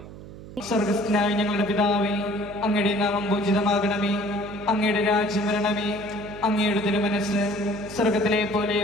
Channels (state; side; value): noise; right; hum, 15 dB below the sound